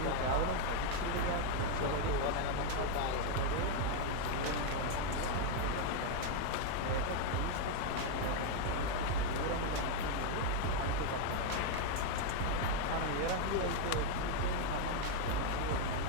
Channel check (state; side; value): different; both; correlation 0.01